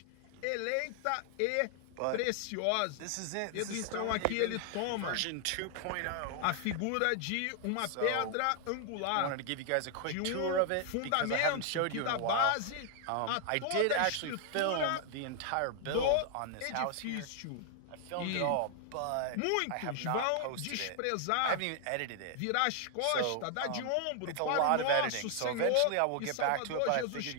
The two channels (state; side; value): different; both; correlation 0.00